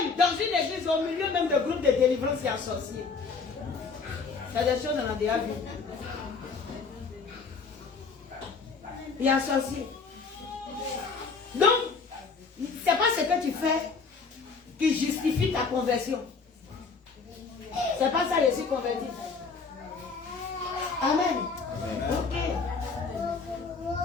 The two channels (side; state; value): right; quieter; 4.8 dB